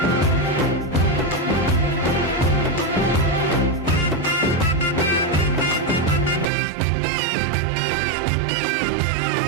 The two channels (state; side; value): drops out; left; at 6.5 s